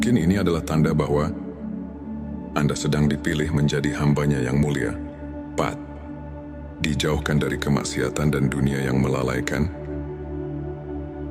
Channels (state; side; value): identical; both; correlation 1.00